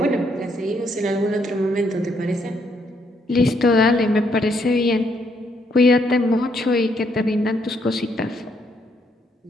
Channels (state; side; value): normal; both; correlation 0.73